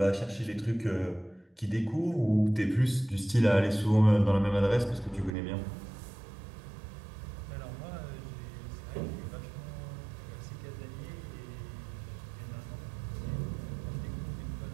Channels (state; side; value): drops out; left; at 5.3 s